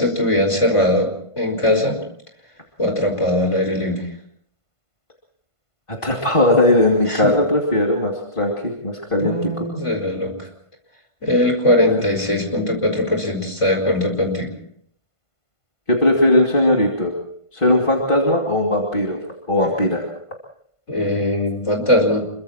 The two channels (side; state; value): right; late; 1.5 ms